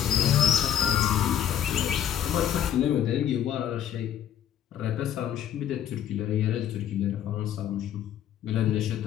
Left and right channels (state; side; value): quieter; right; 9.9 dB